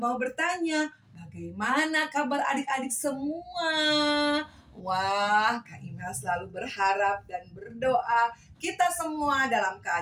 bertanya, bagaimana kabar adik-adik semua? Wah, Kak Imel selalu berharap dan berdoa kita semua dalam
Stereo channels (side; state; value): both; identical; correlation 1.00